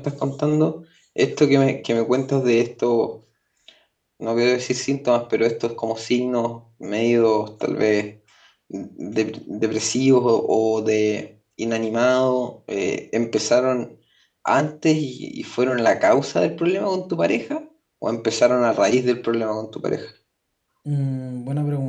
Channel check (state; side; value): identical; both; correlation 1.00